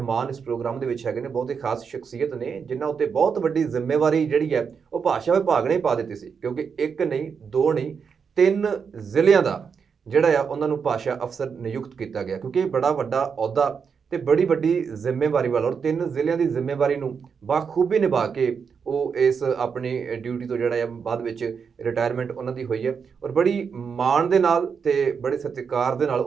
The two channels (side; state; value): left; quieter; 6.2 dB